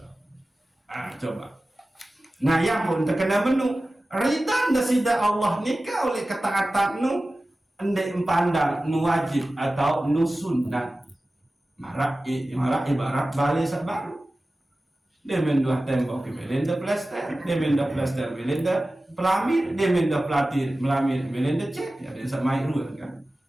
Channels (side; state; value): both; normal; correlation 0.96